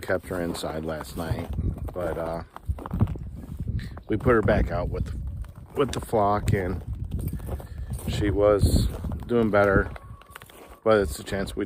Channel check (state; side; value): identical; both; correlation 1.00